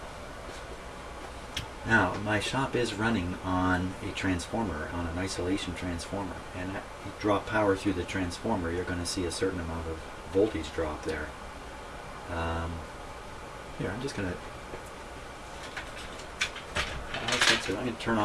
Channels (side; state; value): both; identical; correlation 1.00